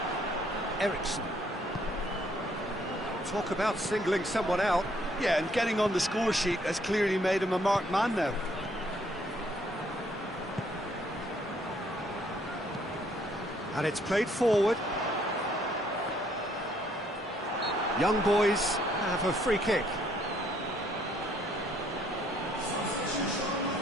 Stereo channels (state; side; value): normal; both; correlation 0.67